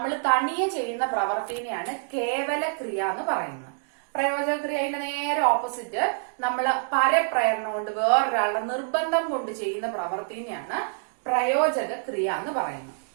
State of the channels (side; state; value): left; silent; 61 dB below the other